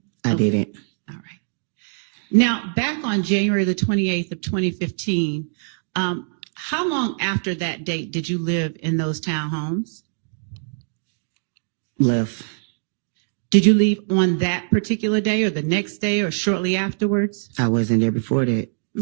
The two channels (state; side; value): silent; left; digital silence